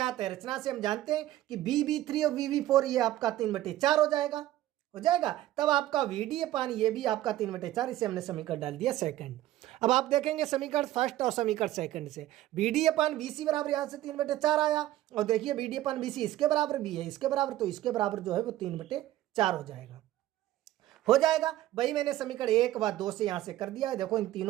है, रचना से हम जानते हैं कि BB3 और BB4 ये आपका 3/4 हो जाएगा, तब आपका VD/ ये भी आपका 3/4, इसे हमने समीकरण डाल दिया सेकंड। अब आप देखेंगे समीकरण फर्स्ट और समीकरण सेकंड से BD/BC बराबर यहां से 3/4 आया, और देखिए BD/BC इसके बराबर भी है, इसके बराबर, तो इसके बराबर जो है वो 3/4 हो जाएगा। वही मैंने समीकरण 1 व 2 से यहां से कर दिया है। देखो इन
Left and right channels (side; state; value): left; quieter; 14.5 dB